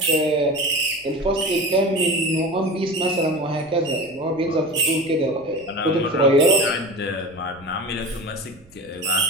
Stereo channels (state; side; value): noise; right; rumble, 27 dB below the sound